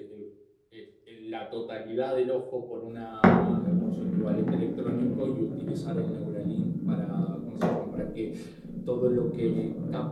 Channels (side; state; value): both; identical; correlation 1.00